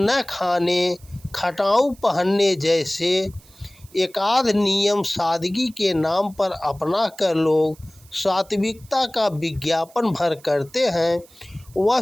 खाने, खटाऊ पहनने जैसे एकाध नियम सादगी के नाम पर अपना कर लोग सात्विकता का विज्ञापन भर करते हैं।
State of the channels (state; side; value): noise; right; hiss, 26 dB below the sound